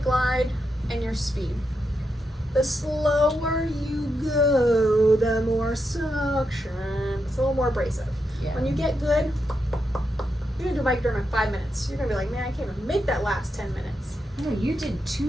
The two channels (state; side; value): normal; both; correlation 0.85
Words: glide, and your speed. The slower you go, the more suction. It's a little more abrasive. Yeah. When you get good, you're gonna do Microderm in 5 minutes. You're gonna be like, man, I can't even make that last 10 minutes. No, you did